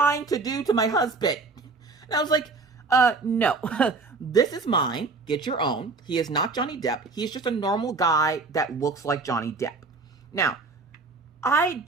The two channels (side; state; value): left; quieter; 4.0 dB